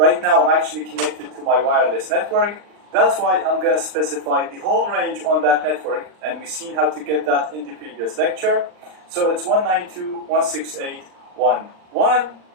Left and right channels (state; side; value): late; left; 39 ms